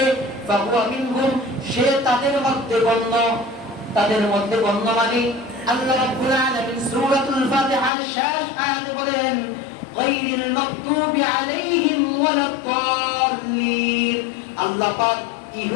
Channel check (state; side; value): drops out; right; at 7.9 s